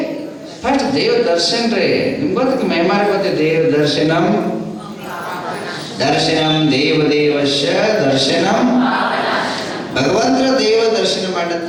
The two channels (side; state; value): both; identical; correlation 1.00